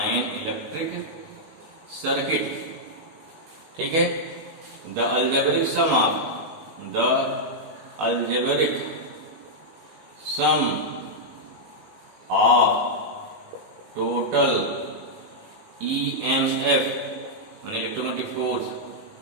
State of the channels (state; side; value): late; left; 19 ms